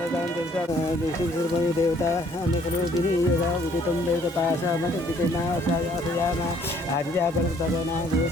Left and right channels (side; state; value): both; normal; correlation 0.62